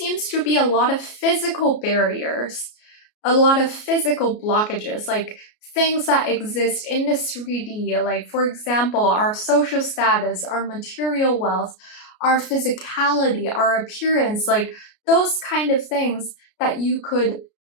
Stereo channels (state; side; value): late; right; 33 ms